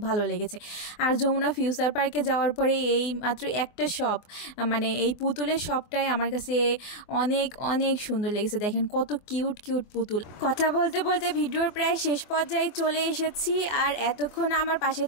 ভালো লেগেছে। আর যমুনা ফিউচার পার্কে যাওয়ার পরে এই মাত্র একটা শপ, এই পুতুলের শপটাই আমার কাছে অনেক অনেক সুন্দর লেগেছে। দেখেন কত কিউট কিউট পুতুল। কথা বলতে বলতে ভিডিওর প্রায় শেষ পর্যায়ে চলে এসেছি। আর এতক্ষণ আমার পাশে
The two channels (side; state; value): right; late; 24 ms